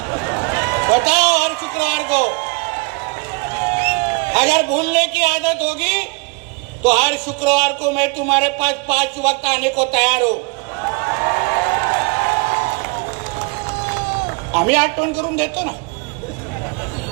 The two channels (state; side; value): quieter; left; 30.0 dB